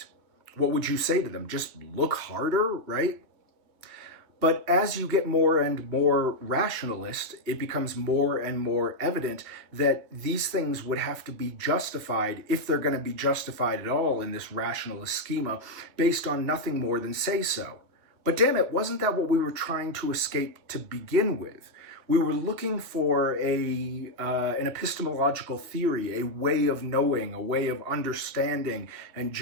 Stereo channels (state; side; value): late; left; 2.7 ms